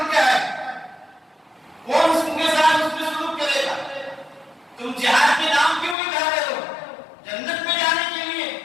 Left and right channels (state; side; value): drops out; right; at 6.0 s